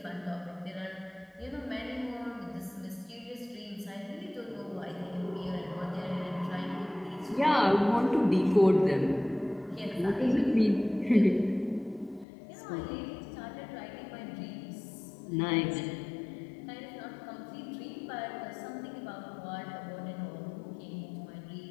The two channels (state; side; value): drops out; right; at 12.2 s